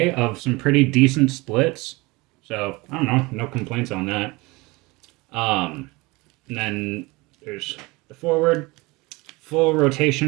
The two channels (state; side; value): quieter; left; 23.7 dB